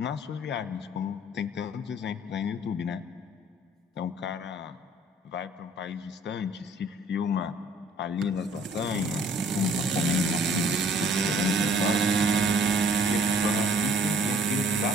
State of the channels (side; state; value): both; normal; correlation 0.56